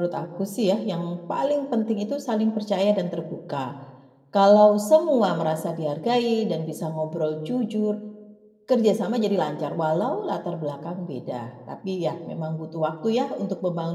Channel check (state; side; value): identical; both; correlation 1.00